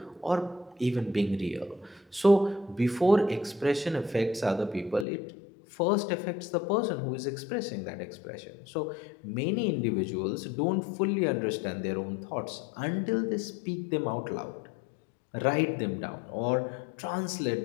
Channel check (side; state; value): right; drops out; at 5.1 s